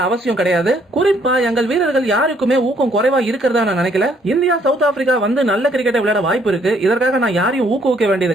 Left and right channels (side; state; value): both; normal; correlation 0.66